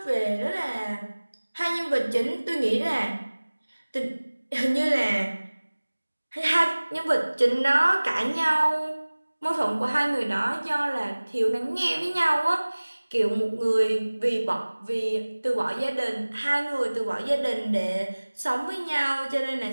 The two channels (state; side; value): inverted; both; correlation -1.00